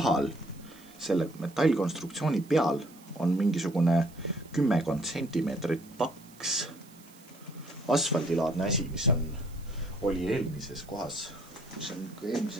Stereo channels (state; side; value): noise; right; hiss, 25 dB below the sound